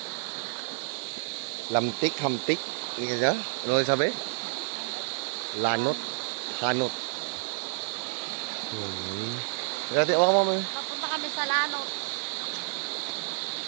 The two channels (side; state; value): left; silent; 58 dB below the other